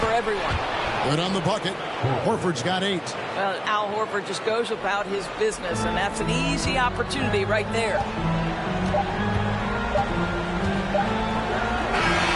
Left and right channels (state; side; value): identical; both; correlation 1.00